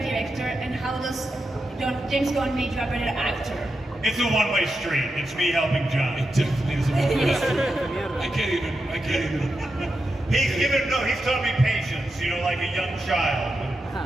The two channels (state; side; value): normal; both; correlation 0.88